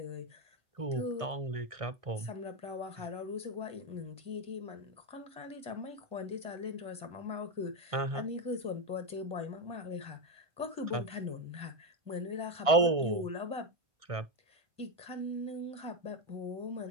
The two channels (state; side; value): late; left; 1.6 ms